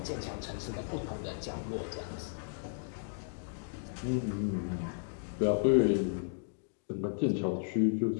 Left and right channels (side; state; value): right; silent; digital silence